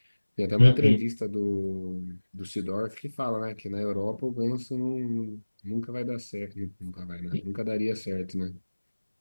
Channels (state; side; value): inverted; both; correlation -1.00